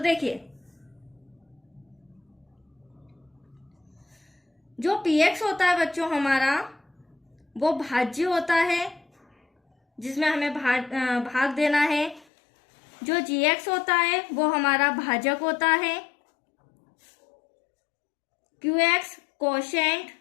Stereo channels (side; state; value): right; drops out; at 12.2 s